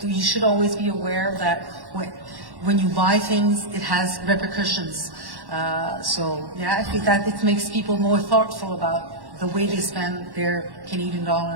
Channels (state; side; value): late; left; 1.1 ms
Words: you should always be aware that when you buy things, it has repercussions. So yeah, I think that it makes people more thoughtful about the way they spend their Canadian